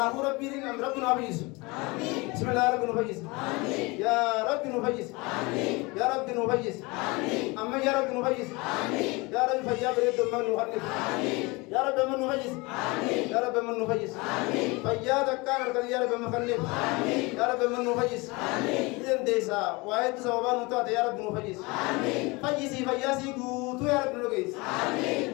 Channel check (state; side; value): quieter; right; 25.3 dB